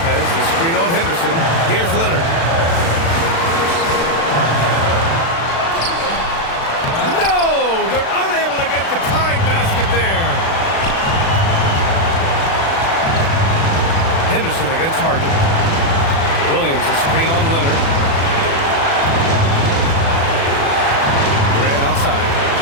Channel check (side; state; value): right; late; 36 ms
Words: the screen on Henderson. Here's Leonard. No! They're unable to get the tying basket there. Henderson against Harden. Williams, a screen on Leonard. Grant outside.